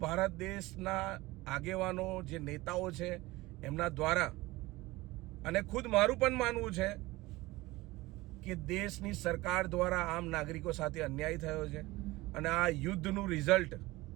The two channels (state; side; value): quieter; left; 20.0 dB